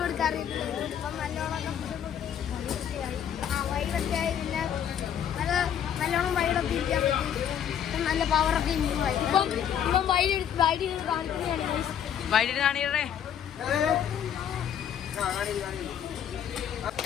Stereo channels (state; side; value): quieter; right; 9.2 dB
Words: കൊടുക്കാൻ അറിയത്തില്ല. ഇപ്പം നല്ലോണം വൈഡൊക്കെ ആയി. പിന്നെ നല്ലോണം വൈഡൊക്കെ ഇരിക്കാൻ പറ്റി. നല്ല പവറൊക്കെ ഇമ്പ്രൂവ് ആയി. ഇപ്പം വൈഡ് കാണിക്കുന്നതാണ്. വൈകിട്ട് കാണിക്കണേ.